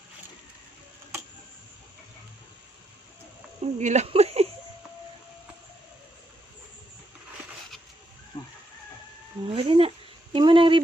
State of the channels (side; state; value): both; normal; correlation 0.80